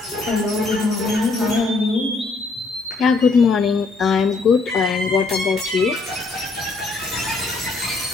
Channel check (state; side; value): quieter; right; 3.8 dB